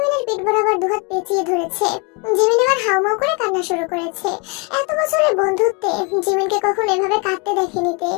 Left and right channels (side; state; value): right; quieter; 32.1 dB